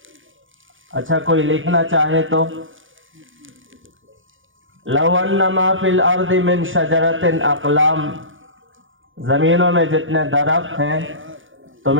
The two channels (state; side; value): late; left; 0.57 ms